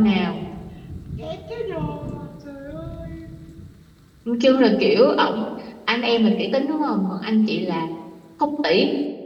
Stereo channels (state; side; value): identical; both; correlation 1.00